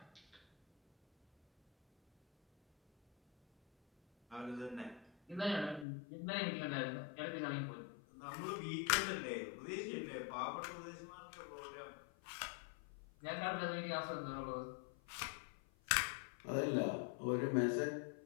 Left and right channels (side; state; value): right; drops out; at 5.9 s